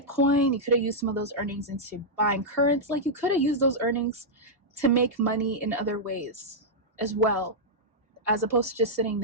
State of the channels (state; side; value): normal; both; correlation -0.08